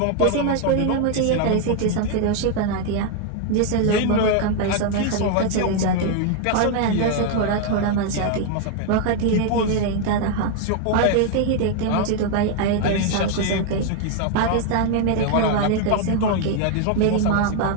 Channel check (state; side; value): different; both; correlation 0.00